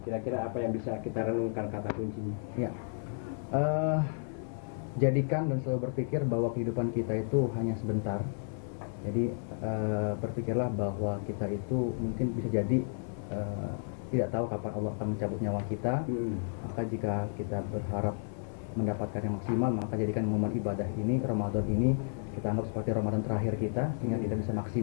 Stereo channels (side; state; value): right; silent; digital silence